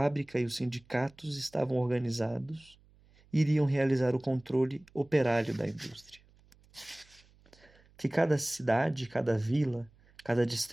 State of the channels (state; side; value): noise; right; hum, 29 dB below the sound